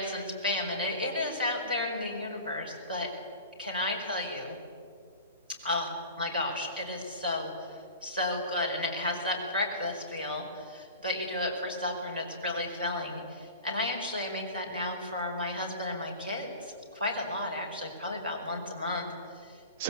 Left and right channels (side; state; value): both; inverted; correlation -0.36